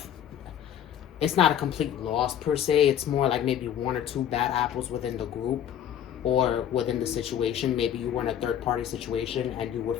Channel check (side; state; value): right; quieter; 9.9 dB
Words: It's not a complete loss per se. It's more like maybe one or two bad apples within the group or within the situation. Maybe you were in a third-party situation and you were